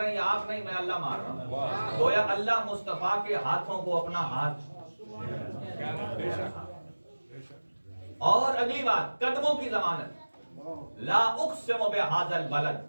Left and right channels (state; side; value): inverted; both; correlation -1.00